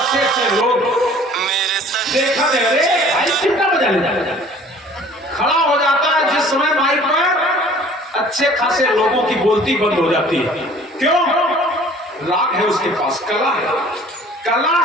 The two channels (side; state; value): both; normal; correlation 0.51